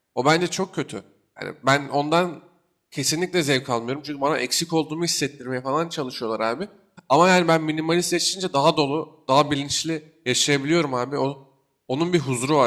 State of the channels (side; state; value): both; identical; correlation 1.00